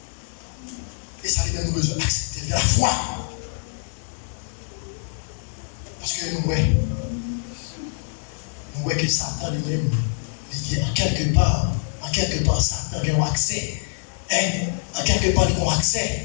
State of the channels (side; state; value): right; silent; 62 dB below the other